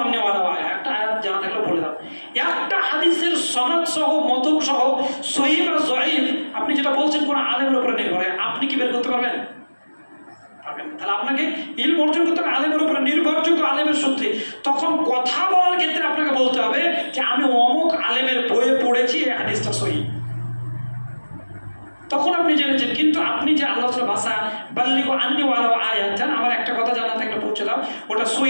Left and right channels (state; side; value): inverted; both; correlation -1.00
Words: আন্নি ওয়ালাউ আয়া, একটা আয়াত জানা থাকলে বলে দাও। একটা হাদিসের সনদ সহ, মতন সহ, সহিহ বা যঈফ আপনি যেটা বলছেন কোন আলেমের উপরে নির্ভর, আপনি কি বের করতে পারবেন? তাহলে আপনাকে ইলম অর্জন করতে হবে আলেমের উপরে, নির্ভরযোগ্য আলেমের সূত্রে। তখন কথা বলার ক্ষেত্রে আপনাকে বলতে হবে যে আমি অমুক আলেমের বইয়ে পড়েছি, এই হাদিসটা সহিহ, তখন আপনি জেনেছেন। কিন্তু আপনি যে আল্লাহর ভাষা বাল্লিগু আন্নি ওয়ালাউ আয়া, জান আমার একটা কথা জানা থাকলে পৌঁছে দাও, ওটা